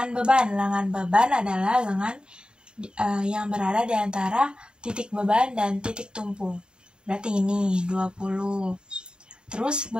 beban. Lengan beban adalah lengan yang berada di antara titik beban dan titik tumpu. Berarti ini 20. Terus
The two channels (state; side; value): late; left; 0.049 ms